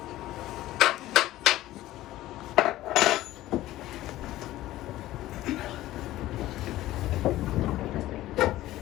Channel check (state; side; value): quieter; right; 15.6 dB